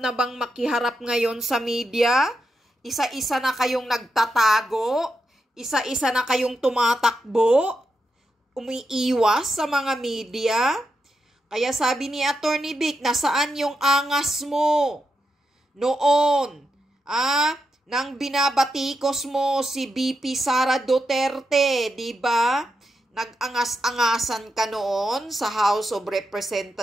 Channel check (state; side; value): normal; both; correlation 0.85